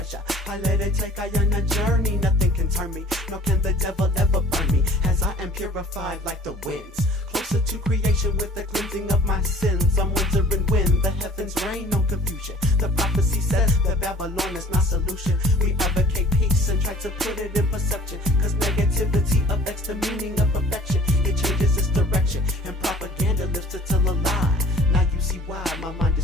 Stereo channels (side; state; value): both; normal; correlation 0.51